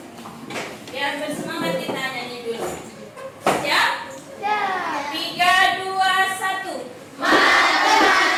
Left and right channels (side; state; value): both; identical; correlation 1.00